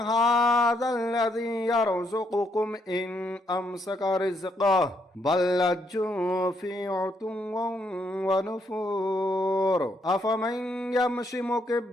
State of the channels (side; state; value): both; normal; correlation 0.74